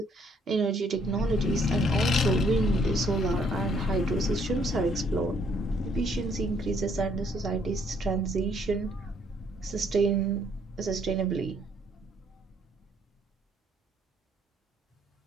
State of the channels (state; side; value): normal; both; correlation 0.66